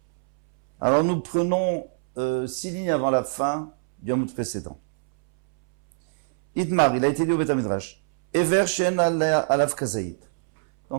Alors nous prenons 6 lignes avant la fin du Amud précédent. Idmar, il a été dit au Beth Midrash. Ever Shen Alav Kazaït.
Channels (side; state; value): left; silent; 63 dB below the other